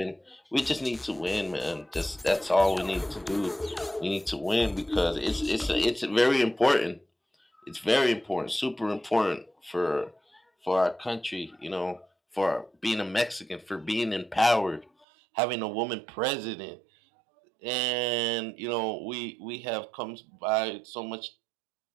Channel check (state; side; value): drops out; left; at 15.1 s